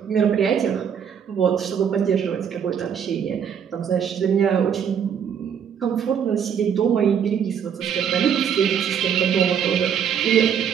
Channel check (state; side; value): quieter; left; 7.9 dB